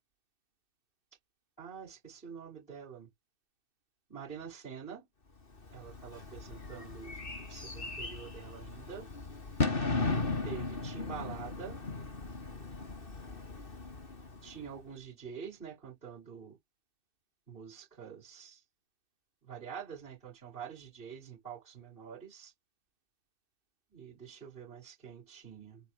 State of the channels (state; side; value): late; right; 2.6 ms